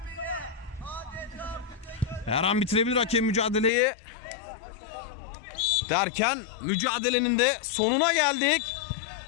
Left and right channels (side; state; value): right; drops out; at 3.7 s